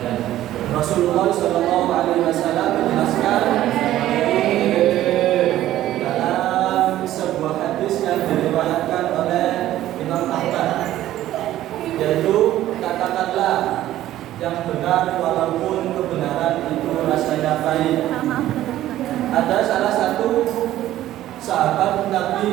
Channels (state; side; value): quieter; left; 13.7 dB